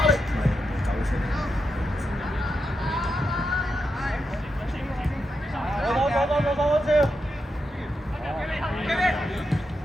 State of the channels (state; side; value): normal; both; correlation 0.86